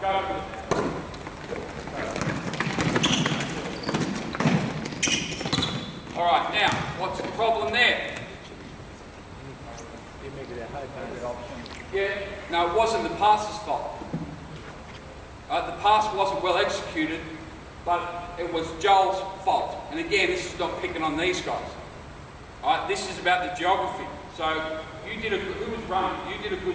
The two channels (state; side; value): identical; both; correlation 1.00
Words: go. All right, now, what's the problem there? Yeah, no, it wasn't the passer's fault. The pass wasn't well executed, but it was Joel's fault. And again, this is not picking on these guys. All right, this is about the geography. So who was running? You did a